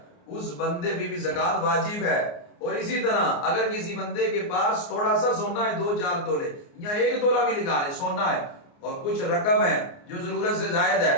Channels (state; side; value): late; right; 29 ms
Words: اس بندے پہ بھی زکات واجب ہے۔ اور اسی طرح اگر کسی بندے کے پاس تھوڑا سا سونا ہے 2-4 تولے یا 1 تولہ بھی لگا لے سونا ہے اور کچھ رقم ہے جو ضرورت سے زائد ہے